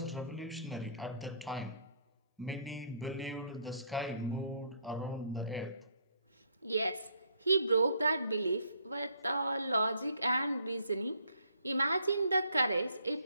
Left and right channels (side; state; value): both; inverted; correlation -0.65